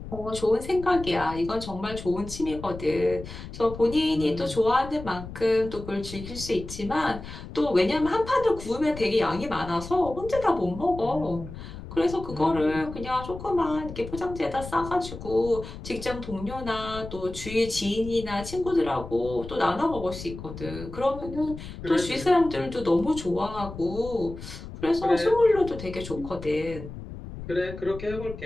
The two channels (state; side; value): noise; left; rumble, 11 dB below the sound